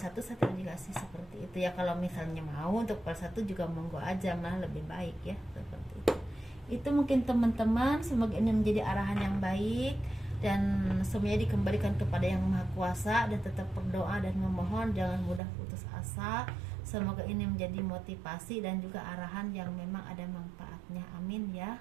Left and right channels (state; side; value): drops out; left; at 15.4 s